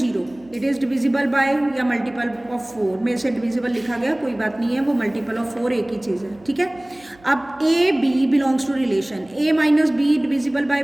it is divisible by या मल्टीपल ऑफ 4, में से डिविजिबल लिखा गया, कोई बात नहीं है, वो मल्टीपल ऑफ 4 एक ही चीज़ है, ठीक है। अब a b belongs to relation, a minus b divisible by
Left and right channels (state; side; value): noise; right; hum, 27 dB below the sound